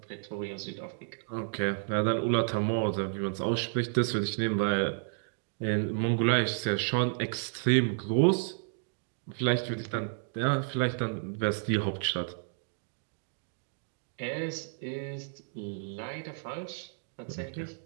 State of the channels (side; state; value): left; silent; digital silence